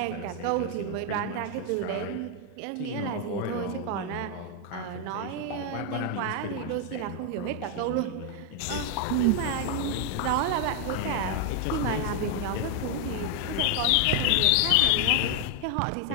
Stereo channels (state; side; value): different; both; correlation 0.01